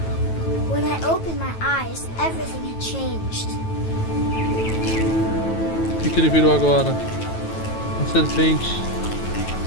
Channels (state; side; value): late; right; 9.2 ms